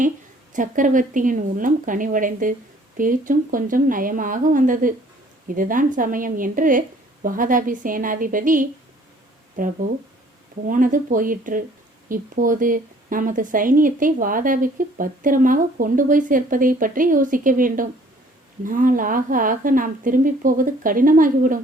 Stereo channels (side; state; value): both; normal; correlation 0.57